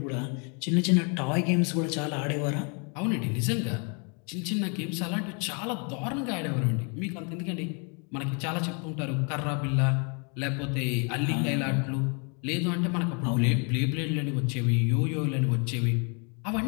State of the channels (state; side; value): quieter; right; 36.1 dB